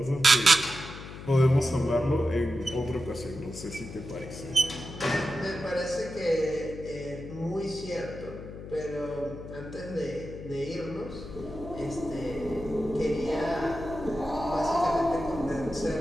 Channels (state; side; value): noise; left; hum, 12 dB below the sound